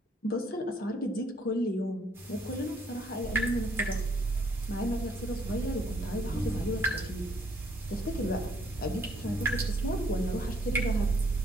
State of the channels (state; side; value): normal; both; correlation 0.67